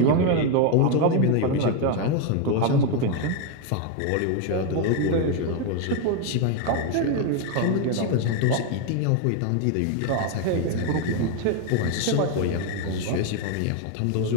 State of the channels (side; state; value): both; different; correlation 0.01